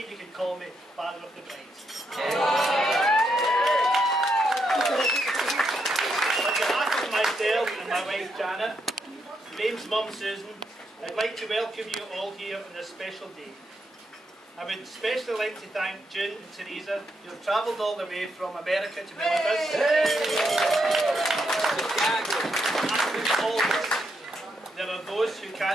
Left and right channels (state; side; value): normal; both; correlation 0.80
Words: you can call me Father of the Bride. On behalf of myself and my wife Janet, Graham's mum Susan, I'd like to welcome you all here on this special day. I would especially like to thank June and Teresa, who have travelled all the way from America to be with us. And always, there are those who